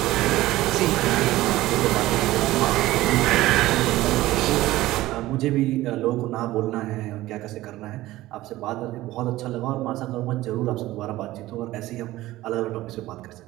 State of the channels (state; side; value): quieter; left; 16.7 dB